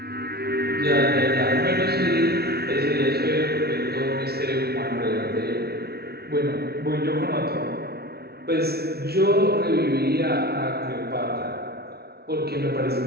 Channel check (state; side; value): late; left; 0.46 ms